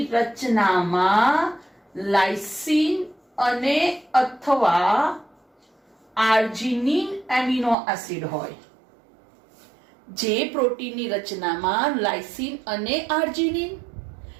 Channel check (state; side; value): drops out; left; at 7.8 s